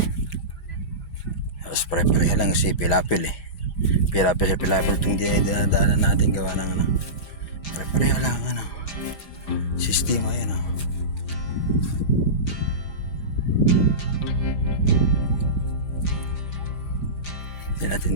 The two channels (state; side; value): late; right; 5.0 ms